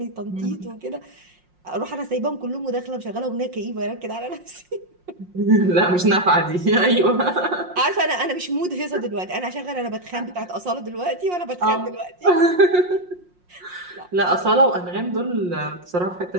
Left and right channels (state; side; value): late; left; 5.6 ms